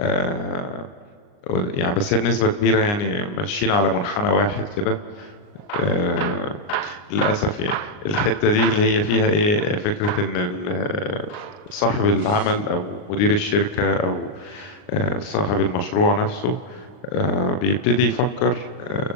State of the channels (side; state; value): right; late; 39 ms